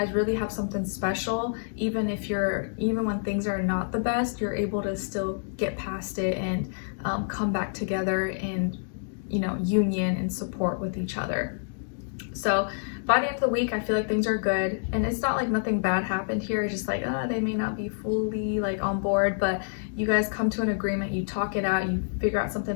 really have something special. Even when things are not the best, you're able to still get past it and come back together in, you know, union and support with each other. So by the end of the week, I feel like things are good. And it's not like nothing bad happened here. It's just like, they may not be fully like on board, but you guys come to an agreement, you talk it out, you figure out something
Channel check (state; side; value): silent; right; digital silence